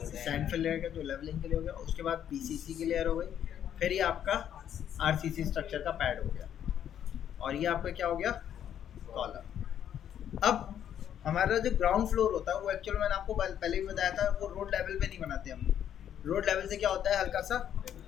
फिल रहेगा जो लेवलिंग के लिए हो गया, उसके बाद PCC की लेयर हो गई, फिर ये आपका RCC स्ट्रक्चर का पैड हो गया और ये आपका क्या हो गया, कॉलम। अब हमारा जो ग्राउंड फ्लोर होता है वो एक्चुअल मैंने आपको पहले भी बताया था, वो रोड लेवल पे नहीं बनाते हम। रोड लेवल से क्या होता है, हल्का सा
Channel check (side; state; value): right; quieter; 9.8 dB